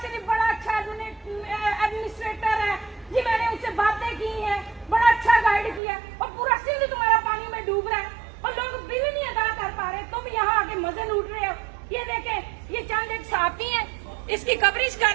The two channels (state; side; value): drops out; left; at 5.8 s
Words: शरीफ बड़ा अच्छा एडमिनिस्ट्रेटर है जी, मैंने उनसे बातें की हैं, बड़ा अच्छा गाइड किया, और पूरा सिंध तुम्हारा पानी में डूब रहा है और लोग बिल नहीं अदा कर पा रहे, तुम यहाँ आके मजे लूट रहे हो। ये देखें, ये चंद एक सहाफी हैं, इसकी कवरेज कर